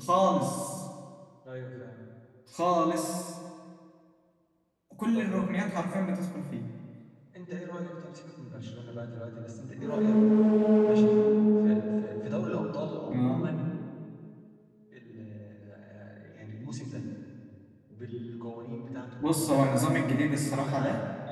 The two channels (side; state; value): both; identical; correlation 1.00